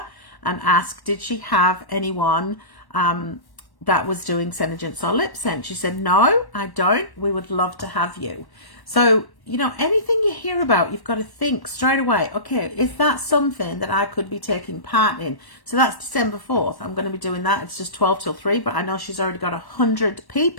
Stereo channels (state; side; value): late; right; 1.1 ms